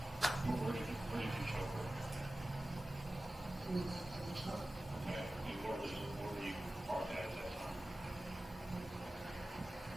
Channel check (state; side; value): normal; both; correlation 0.95